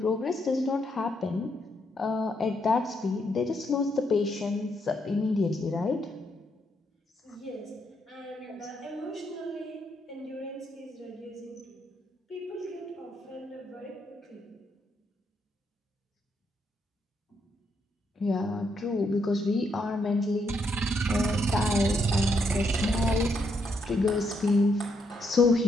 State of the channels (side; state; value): both; normal; correlation 0.77